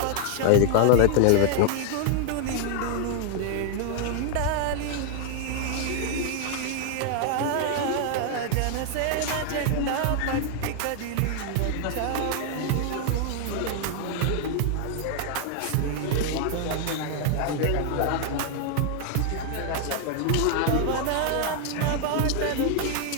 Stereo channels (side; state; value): both; different; correlation 0.00